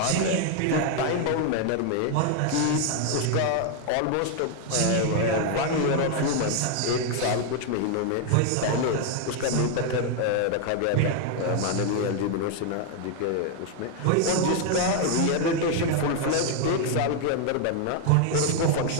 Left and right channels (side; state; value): both; different; correlation 0.00